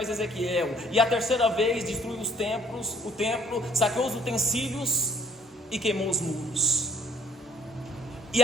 Ezequiel, e a terceira vez destruiu o templo, saqueou os utensílios e queimou os muros. E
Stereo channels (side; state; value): both; normal; correlation 0.59